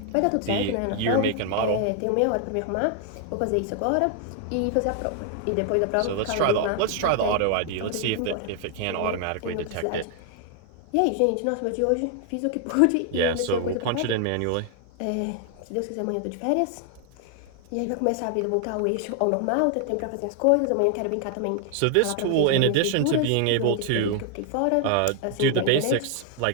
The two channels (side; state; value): both; different; correlation 0.00